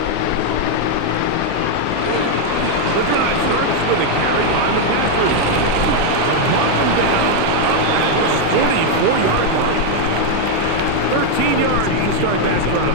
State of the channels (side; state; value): both; different; correlation 0.01